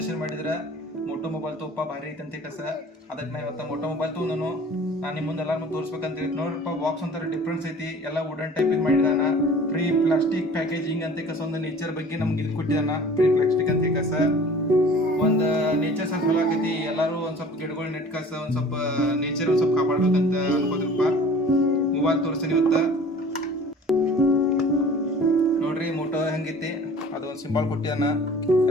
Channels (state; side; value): normal; both; correlation 0.46